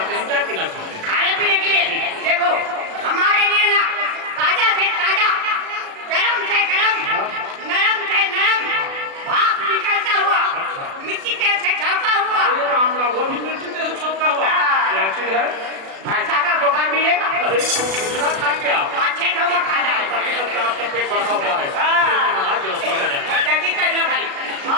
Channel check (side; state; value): left; late; 36 ms